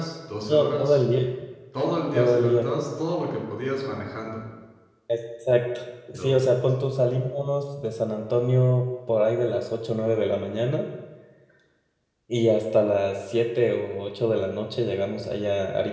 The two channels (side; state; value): both; identical; correlation 1.00